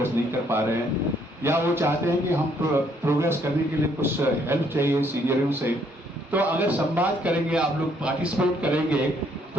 नहीं कर पा रहे हैं या वो चाहते हैं कि हम प्रोग्रेस करने के लिए कुछ हेल्प चाहिए सीनियरों से, तो अगर संवाद करेंगे, आप लोग पार्टिसिपेट करेंगे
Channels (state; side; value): normal; both; correlation 0.67